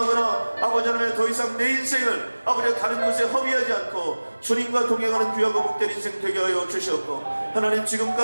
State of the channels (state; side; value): inverted; both; correlation -1.00